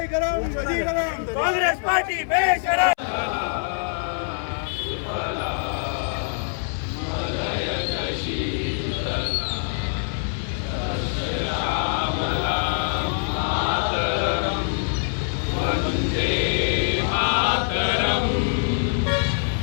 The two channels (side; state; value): right; silent; 62 dB below the other